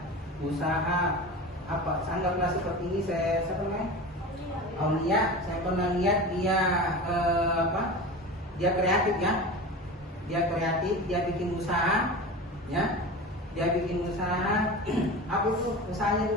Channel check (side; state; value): both; normal; correlation 0.31